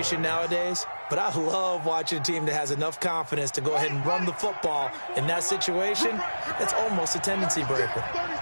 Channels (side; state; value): both; inverted; correlation -1.00